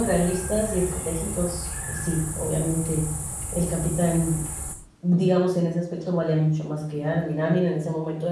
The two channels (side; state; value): both; identical; correlation 1.00